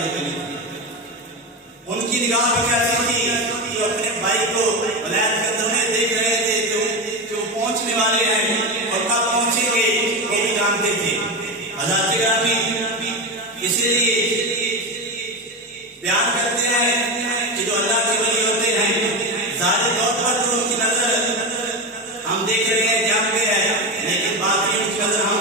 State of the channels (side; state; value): both; normal; correlation 0.18